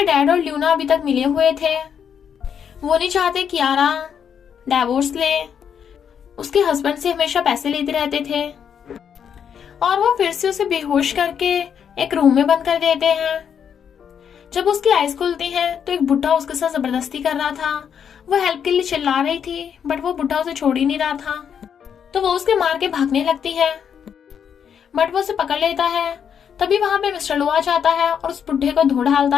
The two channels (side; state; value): right; quieter; 7.8 dB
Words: और ल्यूना अभी तक मिले हुए थे। वो नहीं चाहते कियारा डाइवोर्स ले, उसके हस्बैंड से हमेशा पैसे लेते रहते थे। और वो फिर से उसे बेहोश करके एक रूम में बंद कर देते हैं। जब उसकी आईज खुलती हैं तो एक बुढ़ा उसके साथ जबरदस्ती कर रहा था। वो हेल्प के लिए चिल्ला रही थी, बट वो बुढ़ा उसे छोड़ ही नहीं रहा था। तो वो उसके मार के भागने लगती है, बट वो उसे पकड़ लेता है। तभी वहां पे मिस्टर लू आ जाता है और उस बुढ़े को धो डालता